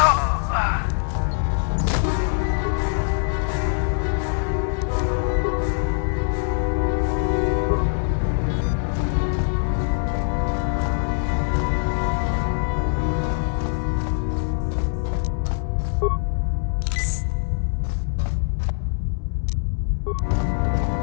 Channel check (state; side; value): silent; right; digital silence